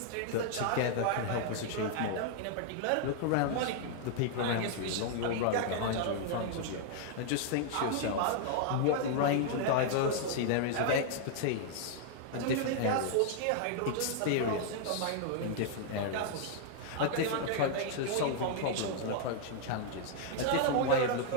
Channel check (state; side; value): different; both; correlation 0.00